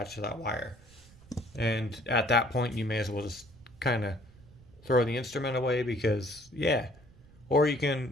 to that wire. And at that point, you may as well just kind of throw the instrument away because, yeah. Or you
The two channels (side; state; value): right; noise; rumble, 24 dB below the sound